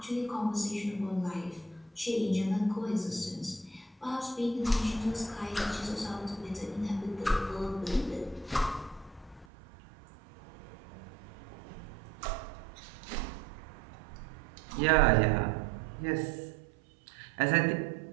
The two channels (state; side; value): drops out; left; at 9.5 s